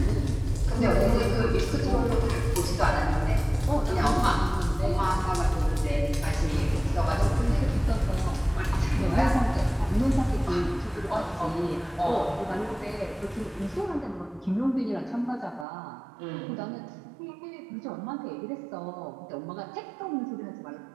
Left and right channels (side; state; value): left; drops out; at 15.7 s